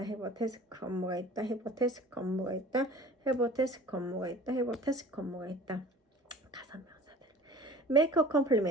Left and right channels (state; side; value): normal; both; correlation 0.44